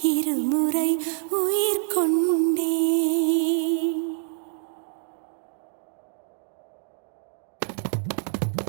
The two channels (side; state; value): left; silent; digital silence